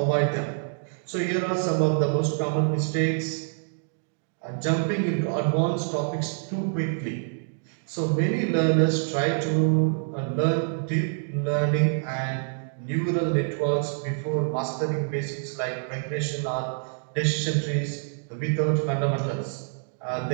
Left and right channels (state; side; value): silent; left; digital silence